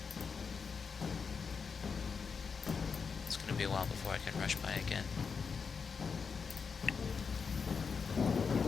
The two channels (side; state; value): right; quieter; 5.6 dB